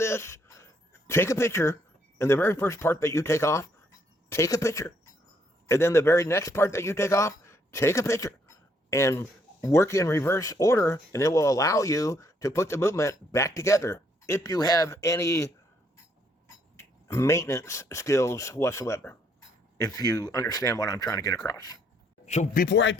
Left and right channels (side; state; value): both; normal; correlation 0.70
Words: take a picture, and the very first part that you take off, take a picture. And then the very next part that you take off, take a picture. And work in reverse order, and it will allow you to put the movement back together if you have any maintenance skills whatsoever, if you understand what I'm trying to get across. So before I